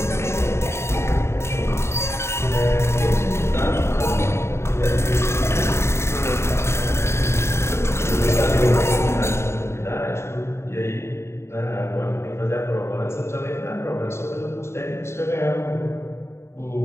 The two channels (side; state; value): right; late; 0.13 ms